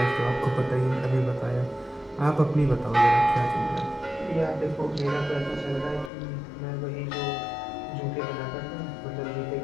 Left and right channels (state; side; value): drops out; right; at 6.1 s